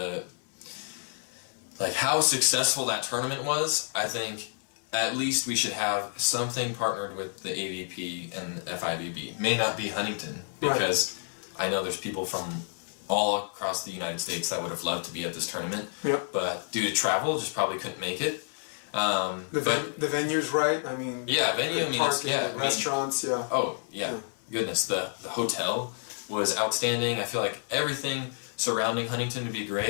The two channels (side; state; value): right; silent; 58 dB below the other